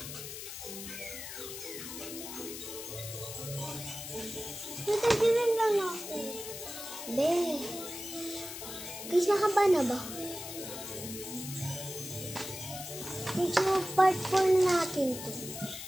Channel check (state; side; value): noise; left; hiss, 9 dB below the sound